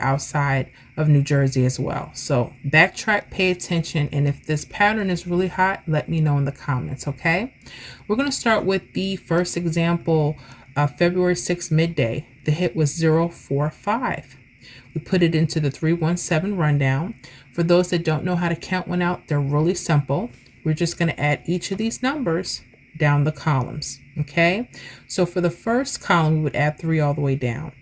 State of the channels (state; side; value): identical; both; correlation 1.00